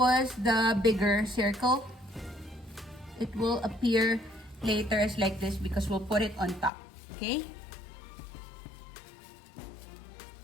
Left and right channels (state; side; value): drops out; right; at 6.7 s